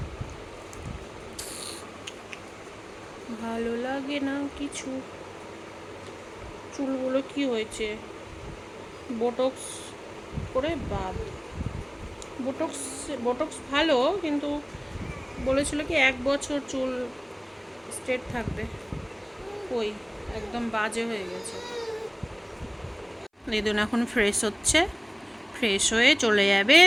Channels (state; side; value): identical; both; correlation 1.00